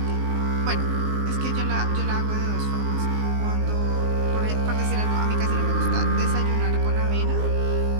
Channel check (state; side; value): late; left; 19 ms